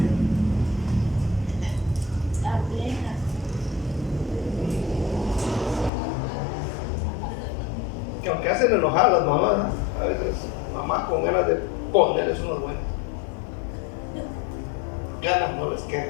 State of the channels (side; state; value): right; drops out; at 5.9 s